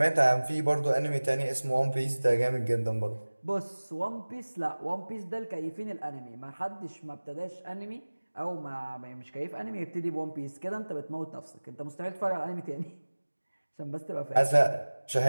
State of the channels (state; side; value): inverted; both; correlation -1.00